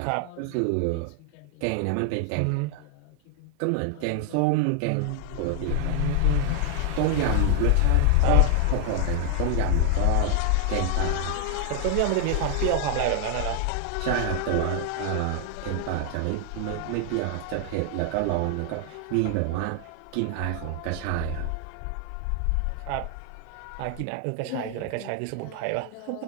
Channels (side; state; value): both; different; correlation 0.00